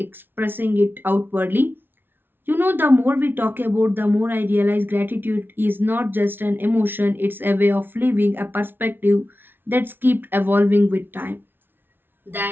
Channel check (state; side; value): late; left; 0.10 ms